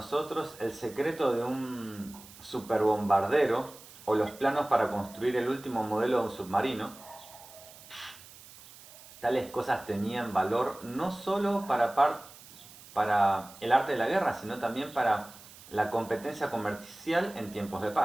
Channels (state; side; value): noise; right; hiss, 20 dB below the sound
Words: el secreto de un superbombardero o los planos para construir el último modelo de un submarino, tales cosas tenían valor no solo para el arte de la guerra, sino también para la competencia comercial en tiempos de